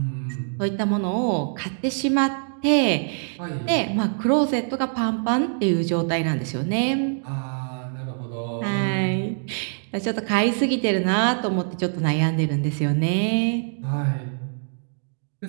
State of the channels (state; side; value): silent; left; digital silence